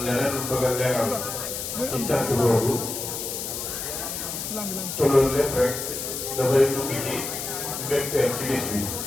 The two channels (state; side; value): noise; left; hiss, 5 dB below the sound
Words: leneen lu bëgg a leeral ci cant boobu te loolu lépp rek dafay dugg ci mbégteem ci bis bi